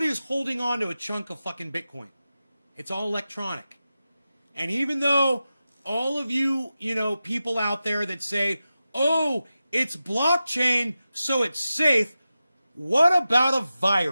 is holding on to a chunk of fucking Bitcoin. It's all electronic. And even though all of you, people out there that say, oh, it's blockchain, so it's safe, what about a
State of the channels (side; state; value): both; inverted; correlation -0.93